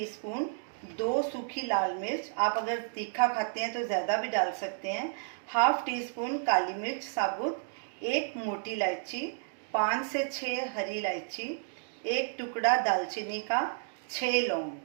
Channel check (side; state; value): left; silent; digital silence